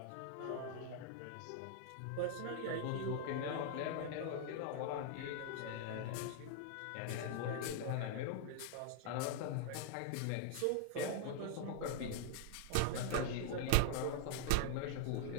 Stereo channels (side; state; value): both; different; correlation 0.00